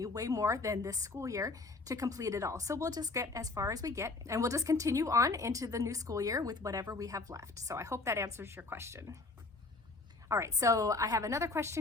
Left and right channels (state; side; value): quieter; right; 3.5 dB